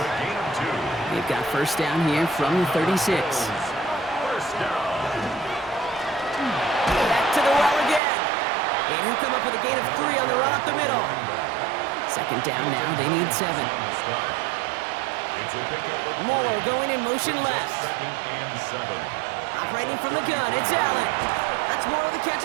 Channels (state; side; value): drops out; left; at 8.0 s